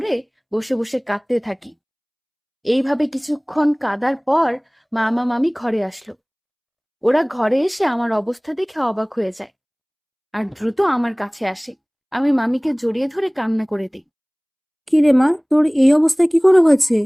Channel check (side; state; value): both; identical; correlation 1.00